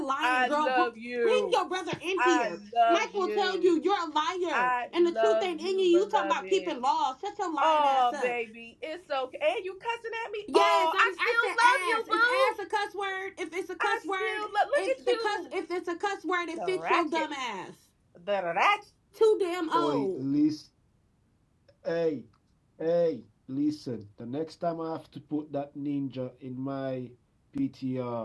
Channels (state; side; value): identical; both; correlation 1.00